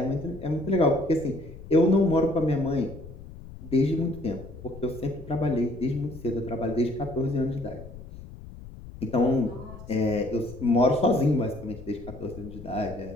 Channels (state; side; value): noise; left; rumble, 15 dB below the sound